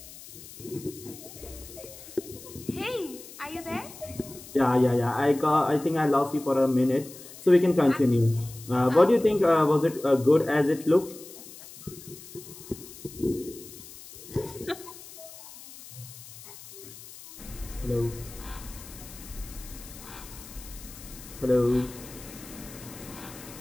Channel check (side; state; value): left; noise; hiss, 16 dB below the sound